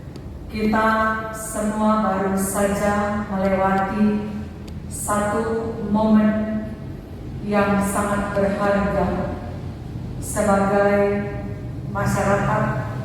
kita semua baru saja melewati satu momen yang sangat berharga sebagai masyarakat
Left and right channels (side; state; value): both; identical; correlation 1.00